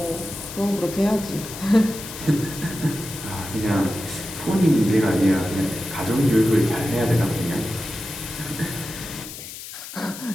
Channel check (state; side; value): noise; left; hiss, 12 dB below the sound